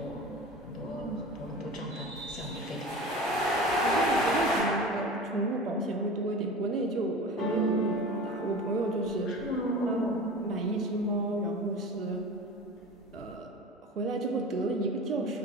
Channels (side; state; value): both; normal; correlation 0.35